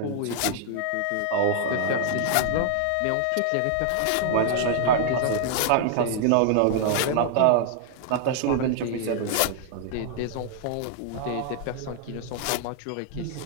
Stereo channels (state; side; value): different; both; correlation -0.01